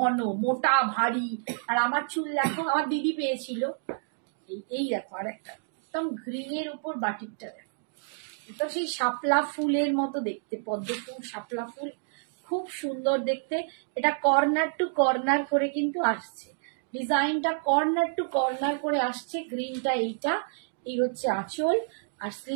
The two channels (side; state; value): left; silent; digital silence